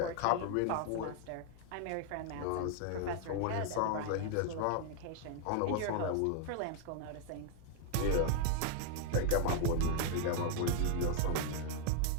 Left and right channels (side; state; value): both; different; correlation 0.00